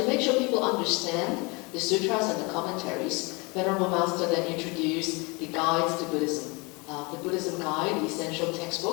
make sure people understand the sutras and the commentaries, Venerable Master then introduced the guides to Buddhism, the Buddhism Guide, the essential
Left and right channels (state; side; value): quieter; right; 28.1 dB